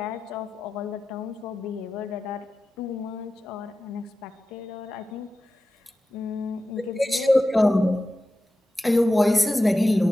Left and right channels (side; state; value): both; normal; correlation 0.93